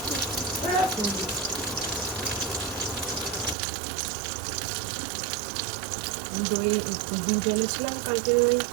দই দুধ এনেছিলাম কালকে, ওই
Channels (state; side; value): drops out; left; at 3.6 s